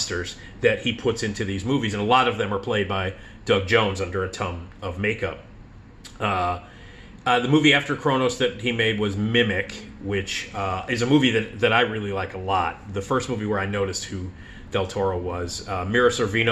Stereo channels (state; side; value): identical; both; correlation 1.00